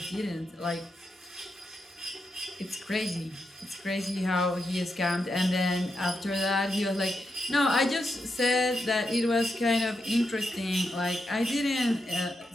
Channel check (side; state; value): both; normal; correlation 0.85